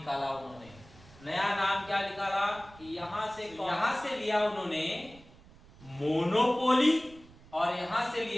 उन्होंने। नया नाम क्या निकाला? यहां से लिया उन्होंने मोनोपोली और यहां से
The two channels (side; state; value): right; noise; rumble, 23 dB below the sound